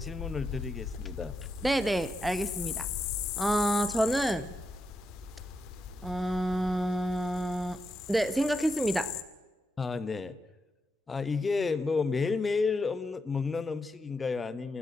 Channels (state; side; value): normal; both; correlation 0.84